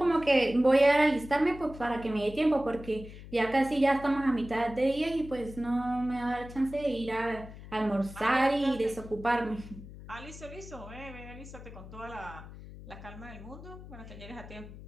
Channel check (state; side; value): noise; left; hum, 15 dB below the sound